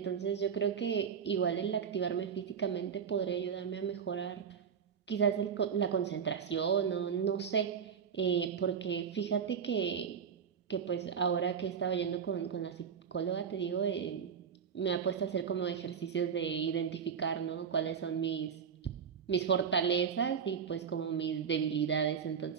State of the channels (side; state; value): left; quieter; 7.2 dB